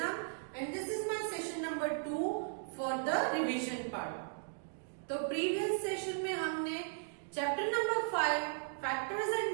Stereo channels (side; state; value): left; silent; digital silence